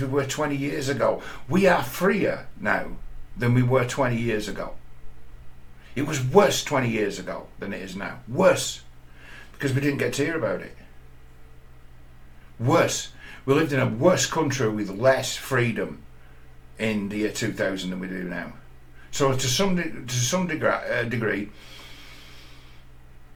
we were 20 years ago. We are freer now than we were 20 years ago. It was worse 20 years ago than it is now. Worse. Because we didn't get to hear about it. Worse. We lived in a worse country with less freedom in the year 2000 than we do now. So to some degree,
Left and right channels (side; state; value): both; identical; correlation 1.00